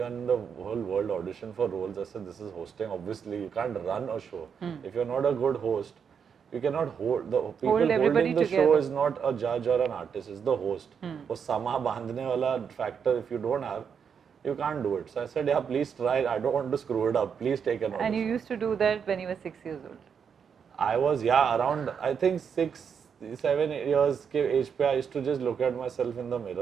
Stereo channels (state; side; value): quieter; left; 7.0 dB